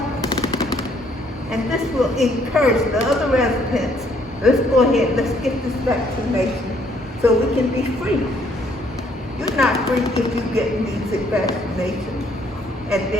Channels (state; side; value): normal; both; correlation 0.66